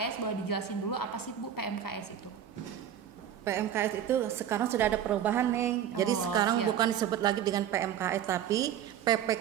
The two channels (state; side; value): quieter; left; 9.7 dB